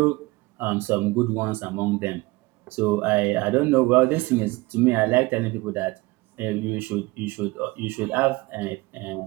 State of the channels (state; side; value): quieter; left; 22.1 dB